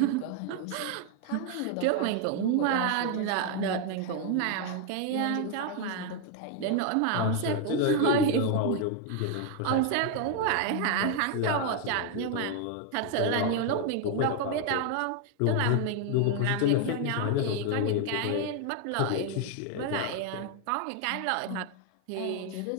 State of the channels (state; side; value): different; both; correlation 0.01